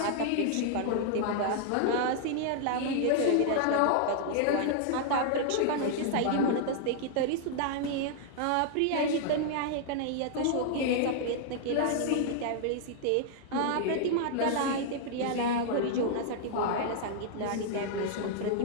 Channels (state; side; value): different; both; correlation -0.01